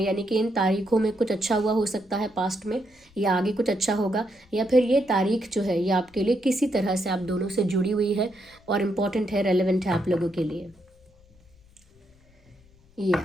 यानी कि इन तारीखों में कुछ अच्छा हुआ हो सकता है पास्ट में, या आगे कुछ अच्छा होगा, या फिर ये तारीख जो है ये आपके लिए किसी तरह से आप दोनों से जुड़ी हुई है और इम्पॉर्टेंट है, रेलेवेंट है आप लोगों के लिए।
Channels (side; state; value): left; noise; rumble, 29 dB below the sound